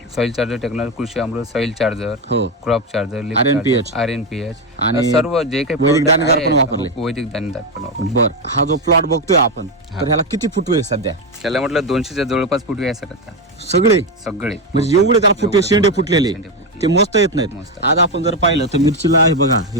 सॉइल चार्जर टेक्नॉलॉजी, कृषी अमृत, सॉइल चार्जर, हो, क्रॉप चार्जर, RNPH. RNPH आणि सर्व जे काही वैदिक product दाणेदार आहे, पण वापरले. हो, वैदिक दाणेदार पण वापरले. बरं, हा जो प्लॉट बघतोय आपण तर ह्याला किती फुटवे आहे सध्या? त्याला म्हटलं 200च्या जवळपास फुटवे आहे सर आता सगळे? सगळे. म्हणजे एवढे त्याला फुटवे शेंडे फुटलेले शेंडे फुटले. ते मस्त येत नाहीत. मस्त. आज आपण जर पाहिलं तर मिरचीला आहे बघा, हे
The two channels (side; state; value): both; normal; correlation 0.09